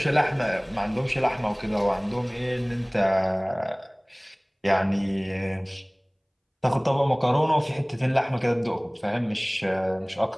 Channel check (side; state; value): both; identical; correlation 1.00